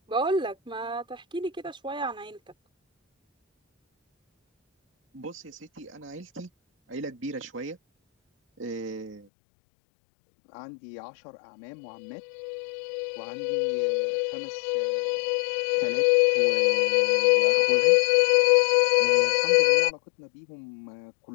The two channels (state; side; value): drops out; right; at 9.2 s